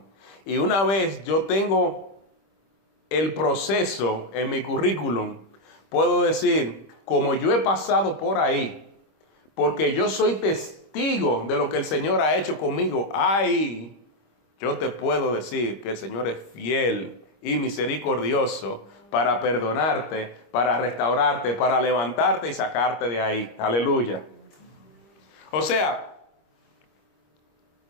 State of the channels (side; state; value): right; late; 26 ms